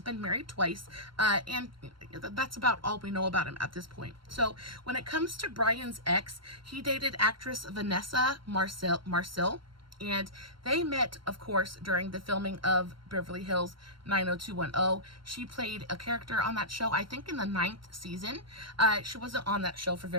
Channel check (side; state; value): left; late; 0.73 ms